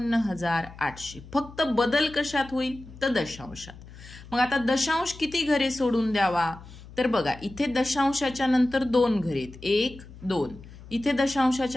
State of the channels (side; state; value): left; noise; hum, 18 dB below the sound